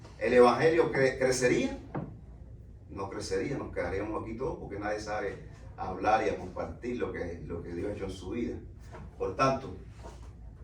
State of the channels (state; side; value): identical; both; correlation 1.00